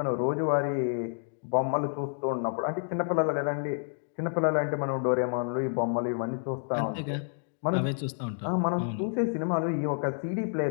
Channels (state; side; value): silent; right; digital silence